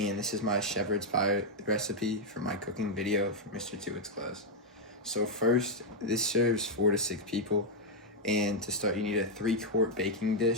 this is my shepherd's pie recipe for my cooking video for Mr. Tuite's class. So first, this serves 4 to 6 people, and to start you need a 3-quart baking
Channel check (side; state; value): both; normal; correlation -0.01